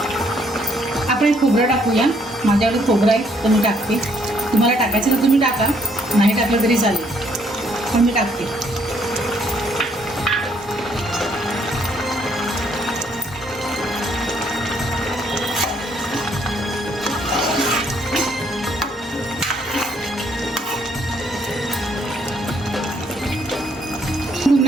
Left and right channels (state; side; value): normal; both; correlation 0.68